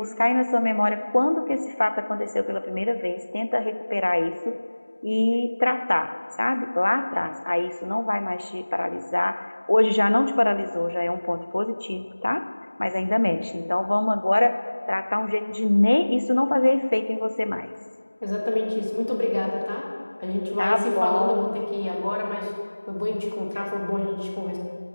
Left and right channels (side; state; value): both; inverted; correlation -1.00